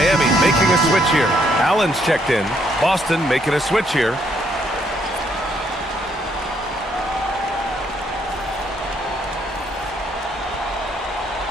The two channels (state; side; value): normal; both; correlation 0.71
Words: making a switch here. Allen's checked in. Boston making a switch here.